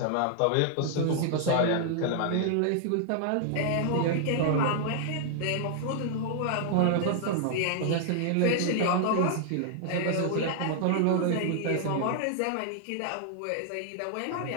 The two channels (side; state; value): both; different; correlation 0.00